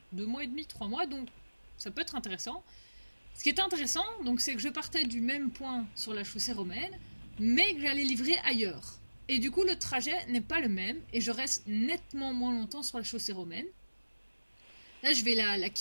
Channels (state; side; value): inverted; both; correlation -1.00